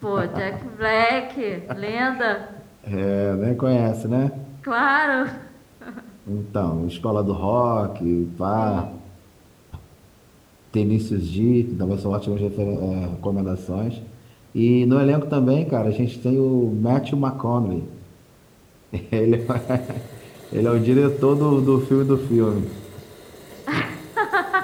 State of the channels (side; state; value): both; identical; correlation 1.00